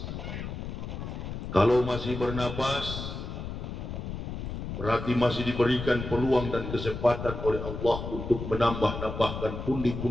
Kalau masih bernapas berarti masih diberikan peluang dan kesempatan oleh Allah untuk menambah-nambahkan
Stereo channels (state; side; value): noise; left; rumble, 6 dB below the sound